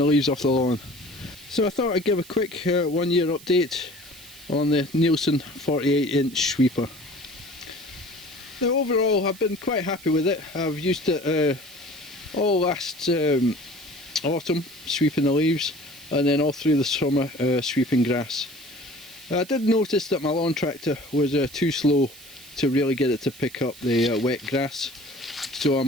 leaves off the lawn. So I thought I'd give a quick 1 year update on the Neilson 48-inch sweeper. Now overall I've been quite happy with it. I've used it all last autumn sweeping the leaves, and then all through the summer sweeping grass. I did notice that my lawn tractor was too slow to really get it to pick up the wet grass. So I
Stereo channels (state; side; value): noise; right; hiss, 19 dB below the sound